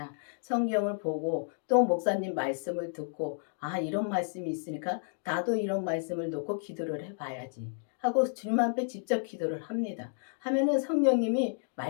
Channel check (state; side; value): silent; right; digital silence